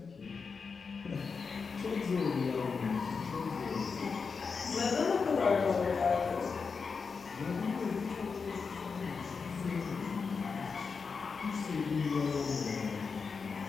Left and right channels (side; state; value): right; quieter; 5.2 dB